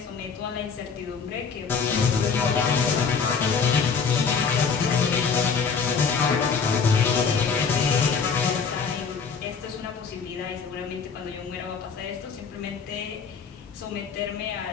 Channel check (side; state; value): right; quieter; 5.8 dB